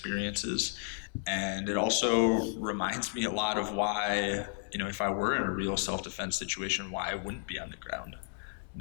And it also reminds me a lot of why, if I were in a real self-defense situation, why I wouldn't be on the ground.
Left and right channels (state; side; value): silent; right; 56 dB below the other